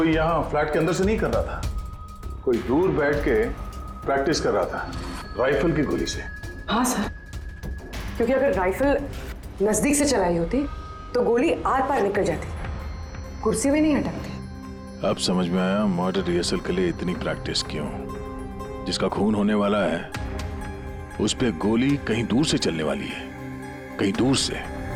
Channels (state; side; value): identical; both; correlation 1.00